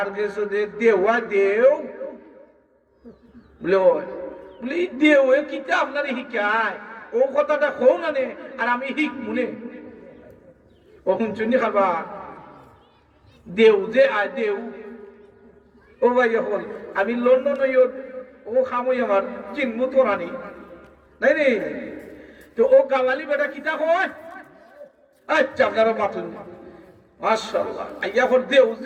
কাছে দেওয়া দেও। বলে বলে দেও কিতা আপনার শিকায়, ও কথাটা কও না নে আর আমি শিখ মনে ও শুনছুনি খাবা দেও যে আয় দেও। ও ভাই হল আমি লন্ডন ও খামই আমার চিনমু তোরানি নাই রে। তো ও গাওয়ালি বেটা কিতা কয়? আচ্ছা আপনারা বাতুন মাশাআল্লাহ আইয়া হল দেও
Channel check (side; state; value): both; identical; correlation 1.00